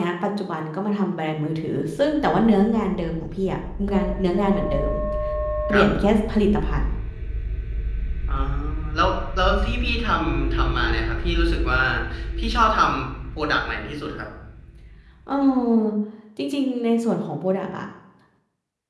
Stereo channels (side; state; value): both; identical; correlation 1.00